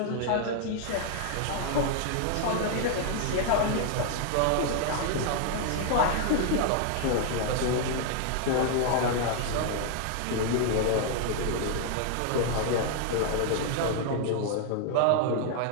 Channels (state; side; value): different; both; correlation 0.00